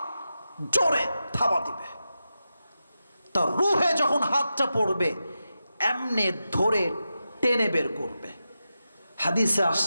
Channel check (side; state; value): both; inverted; correlation -0.90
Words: জোরে থাবা দিবে। তার রূহে যখন হাতটা পড়বে, এমনি ধরে টেনে বের করবে। হাদিসে